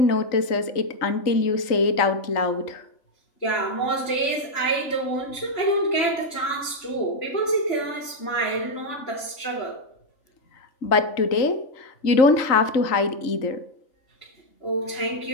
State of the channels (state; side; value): late; right; 3.5 ms